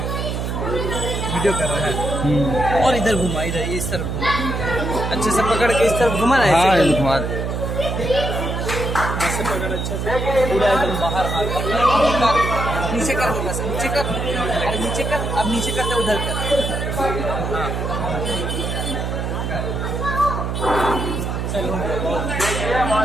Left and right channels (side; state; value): right; noise; hum, 2 dB below the sound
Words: ویڈیو کر رہا ہے اور ادھر گھما ادھر اس طرف گھما اچھے سے پکڑ کے اس طرف گھما نا ہاں ایسے گھما دے ایسے پکڑ اچھے سے پورا ایک دم باہر ہاتھ نیچے کر دے بس نیچے کر ارے نیچے کر اب نیچے کرتے ادھر کر